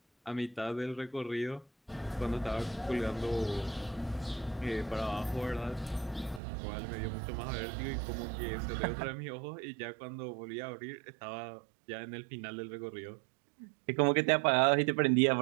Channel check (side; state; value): left; drops out; at 6.4 s